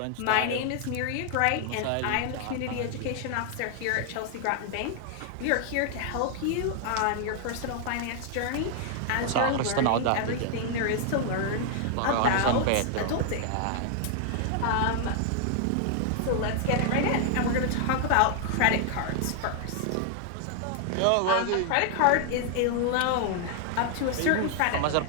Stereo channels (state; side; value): different; both; correlation 0.00